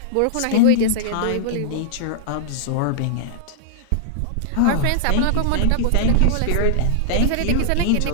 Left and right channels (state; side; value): different; both; correlation -0.01